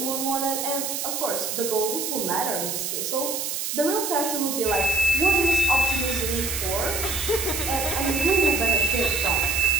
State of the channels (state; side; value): noise; right; hiss, 3 dB below the sound